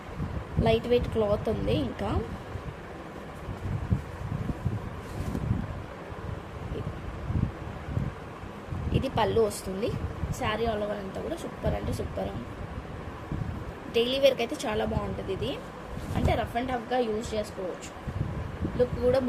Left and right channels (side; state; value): both; identical; correlation 1.00